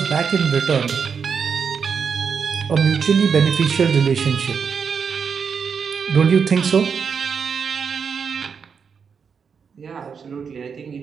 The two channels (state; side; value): quieter; left; 6.3 dB